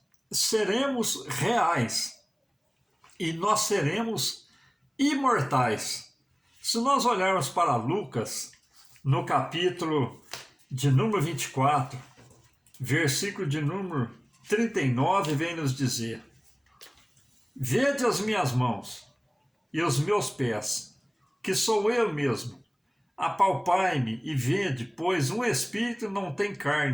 seremos reais e nós seremos imortais. Se nós olharmos para Lucas, no capítulo de número 24, versículo de número 39, vem nos dizer: Vede as minhas mãos e os meus pés, que sou eu mesmo. Apalpai-me e vede, pois um espírito não tem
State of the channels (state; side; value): identical; both; correlation 1.00